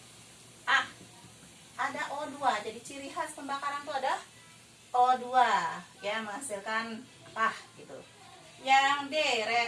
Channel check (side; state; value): both; identical; correlation 1.00